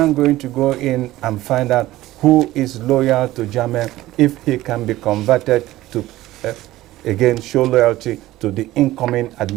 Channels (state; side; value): quieter; left; 16.3 dB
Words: going to go in and find out who is loyal to Jammeh, if he can be converted to, again, show loyalty to the incoming